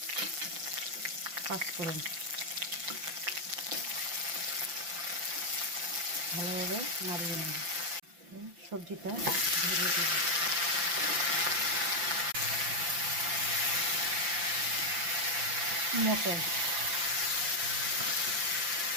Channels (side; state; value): left; late; 5.8 ms